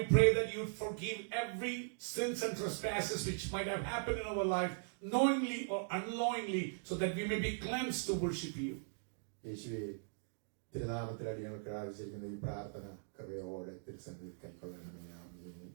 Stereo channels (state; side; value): silent; left; digital silence